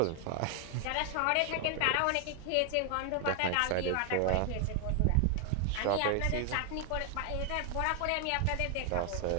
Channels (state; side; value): different; both; correlation 0.00